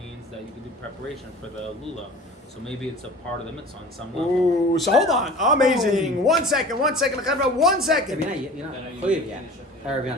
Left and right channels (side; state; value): both; normal; correlation 0.41